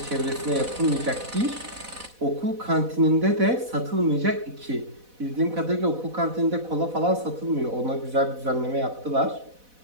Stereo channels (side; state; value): left; late; 4.1 ms